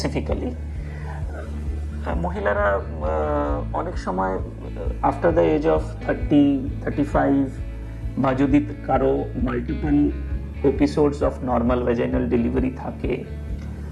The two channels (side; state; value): both; identical; correlation 1.00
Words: মহিলারা অনেক সময় আফটার দ্য এজ অফ 30-35 বা যদি কারো multiple episodes of normal vaginal delivery থাকে,